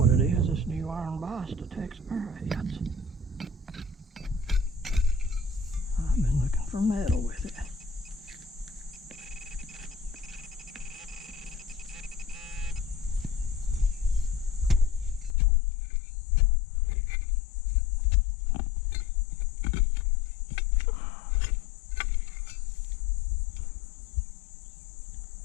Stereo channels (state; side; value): drops out; right; at 15.4 s